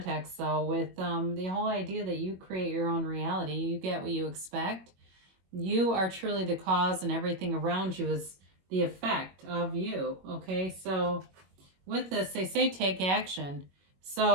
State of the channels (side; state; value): left; late; 21 ms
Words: though, with the whole idea that you create your own reality. You get what you expect. You are truly the cause, and everything around you is the effect of you, okay? So with this, they say take action.